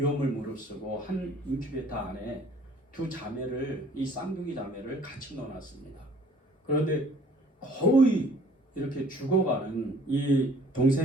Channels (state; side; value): normal; both; correlation 0.55